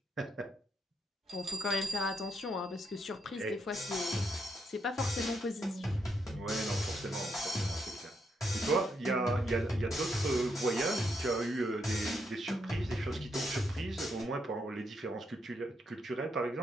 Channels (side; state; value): both; normal; correlation 0.78